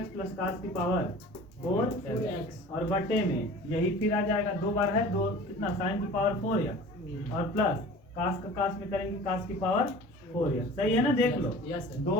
प्लस कास की पावर 4x और बटे में यही फिर आ जाएगा 2 बार है 2 कितना? साइन की पावर 4x और प्लस कास का कास में करेंगे कास की पावर 4x। सही है ना? देख लो यस सर 2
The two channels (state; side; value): normal; both; correlation 0.42